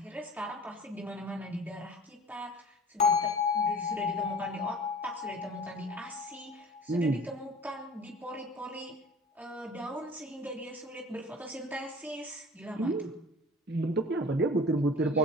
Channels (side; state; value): both; normal; correlation 0.42